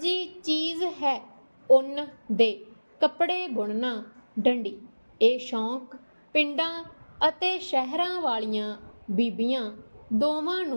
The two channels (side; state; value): both; inverted; correlation -1.00